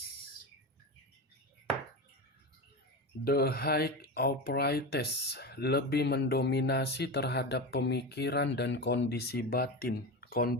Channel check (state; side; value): normal; both; correlation 0.22